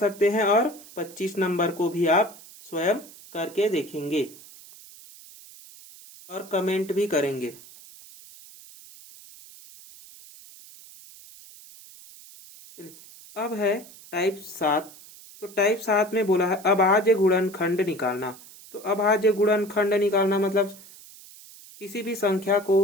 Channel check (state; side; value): noise; right; hiss, 20 dB below the sound